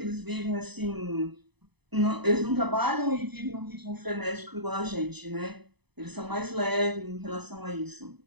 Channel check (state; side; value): late; left; 0.99 ms